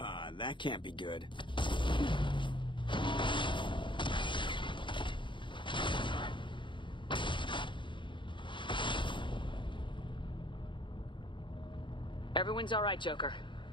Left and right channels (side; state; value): right; late; 0.23 ms